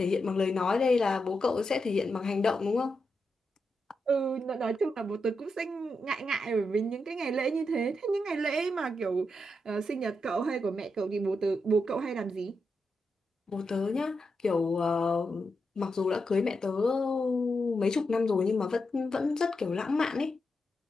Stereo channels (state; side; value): normal; both; correlation 0.85